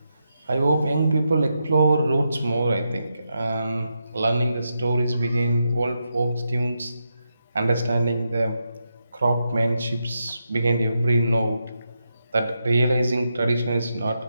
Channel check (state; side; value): inverted; both; correlation -0.85